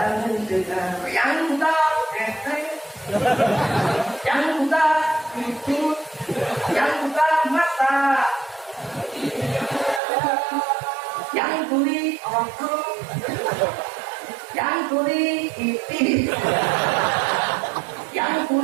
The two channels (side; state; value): left; drops out; at 10.0 s